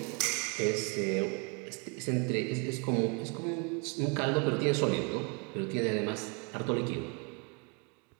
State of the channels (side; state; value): left; quieter; 32.6 dB